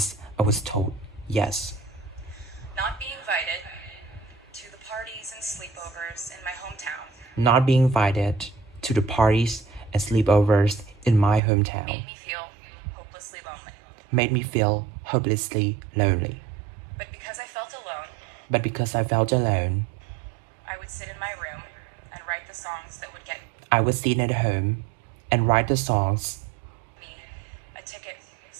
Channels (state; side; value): drops out; left; at 11.4 s